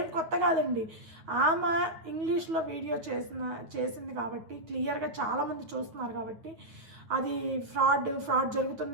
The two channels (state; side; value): late; left; 9.2 ms